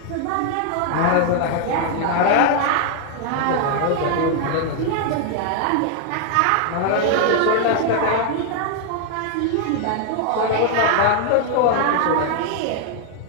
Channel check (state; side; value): different; both; correlation 0.00